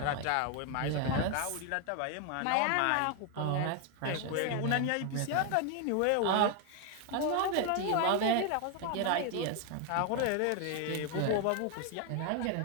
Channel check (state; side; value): different; both; correlation 0.01